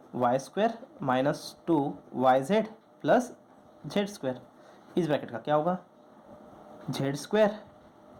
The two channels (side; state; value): both; identical; correlation 1.00